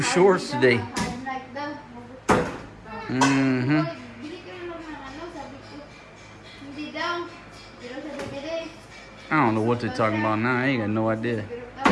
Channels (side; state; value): both; identical; correlation 1.00